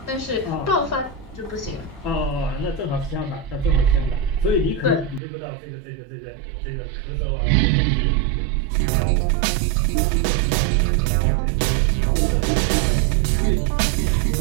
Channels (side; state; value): left; drops out; at 5.2 s